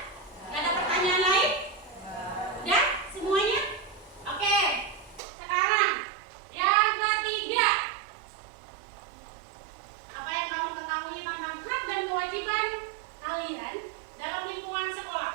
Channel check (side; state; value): left; drops out; at 5.2 s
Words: Nggak ada pertanyaan lain? Udah semuanya? Oke, sekarang yang ketiga, apa yang kamu ketahui tentang hak dan kewajiban kalian dalam lingkungan